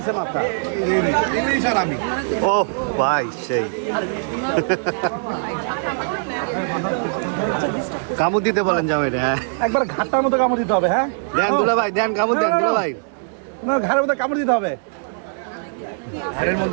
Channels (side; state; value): left; silent; 65 dB below the other